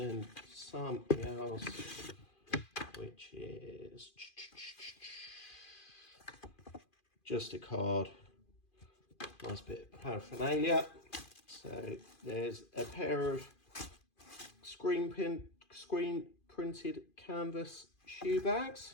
something else, which is just a card, nice bit of paraphernalia. So there's a pair of screen printed canvas shoe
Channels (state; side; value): late; right; 2.4 ms